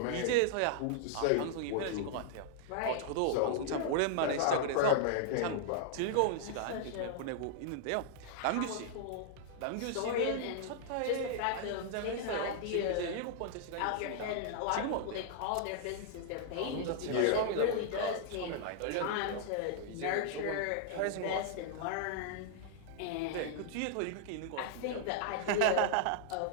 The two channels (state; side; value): different; both; correlation -0.01